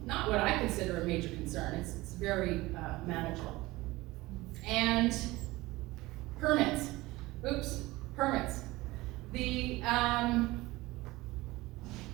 not what I consider a major concern. It's very manageable. And Permits. Oops, permits.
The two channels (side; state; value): left; quieter; 19.9 dB